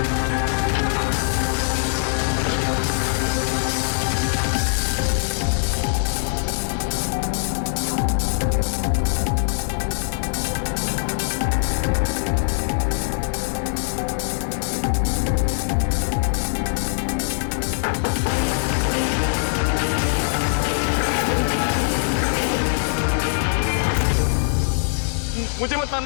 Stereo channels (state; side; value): silent; right; digital silence